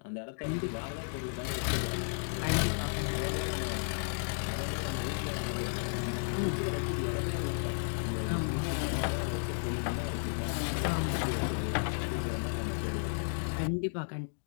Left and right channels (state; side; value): silent; right; digital silence